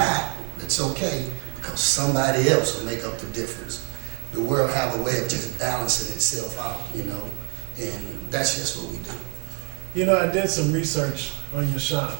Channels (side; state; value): left; quieter; 36.0 dB